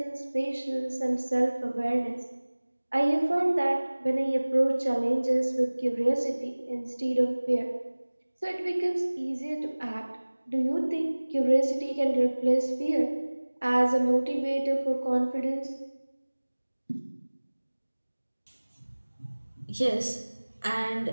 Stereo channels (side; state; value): both; inverted; correlation -1.00